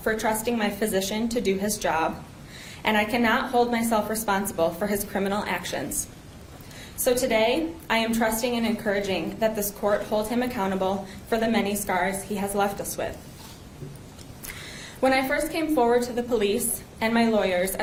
for trusting my physician to do his job, and I cannot hold myself responsible for his criminal actions. So today, I am trusting and encouraging that this court hold him accountable for the many scars he has left us with. When I first came forward to the police and my lawyers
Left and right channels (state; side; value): identical; both; correlation 1.00